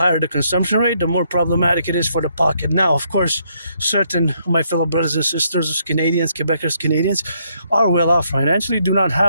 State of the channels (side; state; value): both; inverted; correlation -0.72